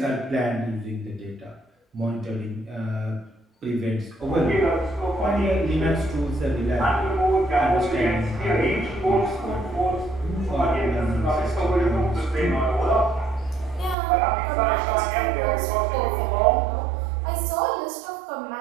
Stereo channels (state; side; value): drops out; left; at 14.0 s